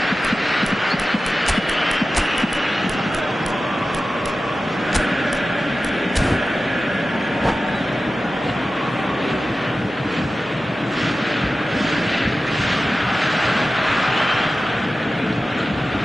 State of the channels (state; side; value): normal; both; correlation 0.94